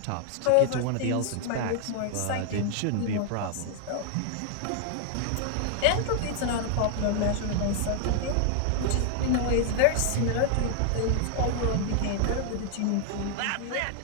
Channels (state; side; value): different; both; correlation 0.00